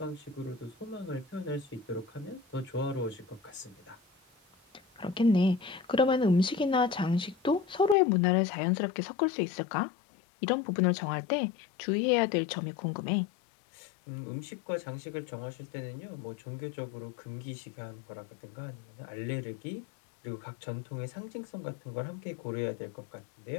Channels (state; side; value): drops out; right; at 8.0 s